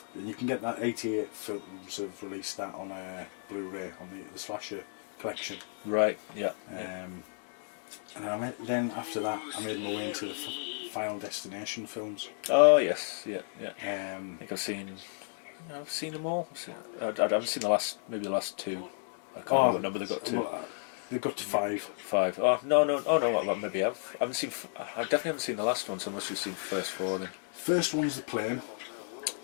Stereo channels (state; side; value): silent; right; digital silence